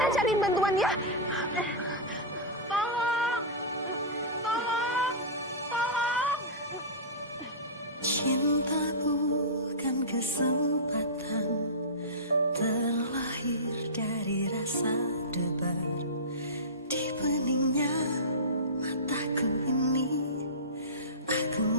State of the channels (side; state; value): both; normal; correlation -0.18